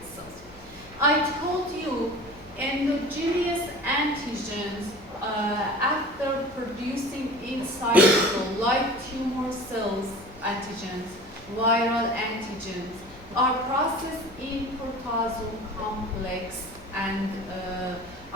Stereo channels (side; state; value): left; noise; hum, 24 dB below the sound